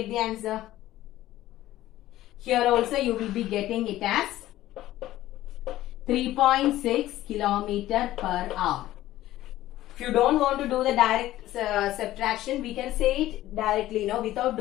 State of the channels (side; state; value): right; quieter; 14.9 dB